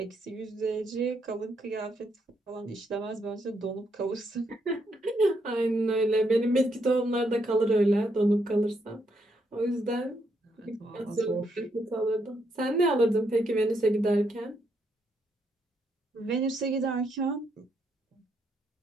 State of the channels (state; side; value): normal; both; correlation 0.76